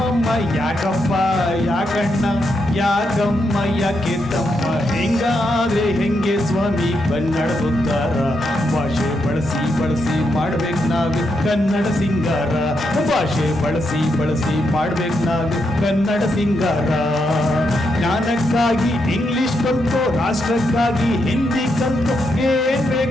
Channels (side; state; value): both; normal; correlation 0.81